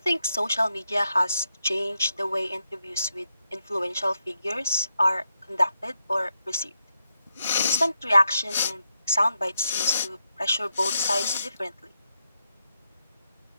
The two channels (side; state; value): both; inverted; correlation -0.84